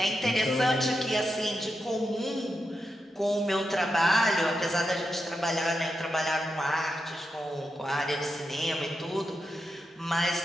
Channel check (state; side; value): normal; both; correlation 0.87